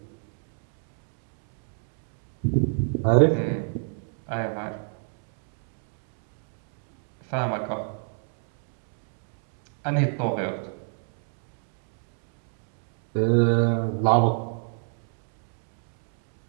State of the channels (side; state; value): left; silent; 56 dB below the other